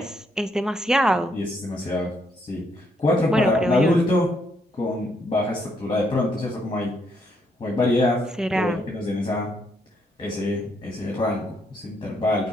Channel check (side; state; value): both; normal; correlation 0.74